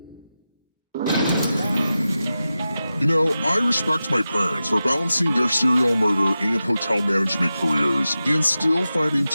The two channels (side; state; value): both; inverted; correlation -0.93